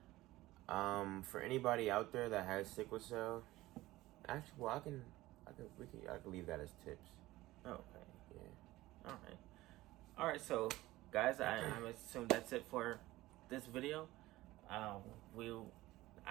For anybody out there that has sickle cell, actually, well, I can leave that as tips. Okay. Yeah. All right. So, guys, I assume that's it for this video. I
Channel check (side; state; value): left; quieter; 17.6 dB